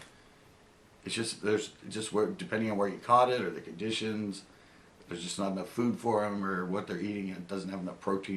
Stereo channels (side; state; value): both; identical; correlation 1.00